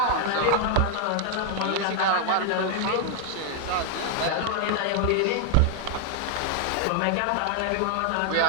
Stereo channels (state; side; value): different; both; correlation 0.00